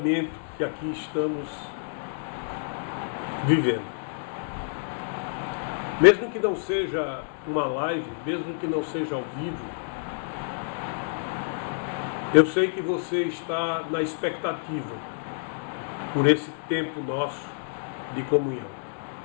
que aqui estamos vivendo. Mesmo que não seja uma live, mesmo que não seja ao vivo, eu sei que você está na expectativa por esse tempo nosso de comunhão.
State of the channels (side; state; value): right; silent; digital silence